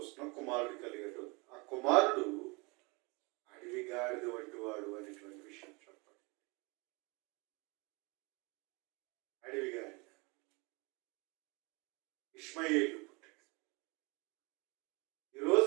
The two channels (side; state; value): left; quieter; 28.2 dB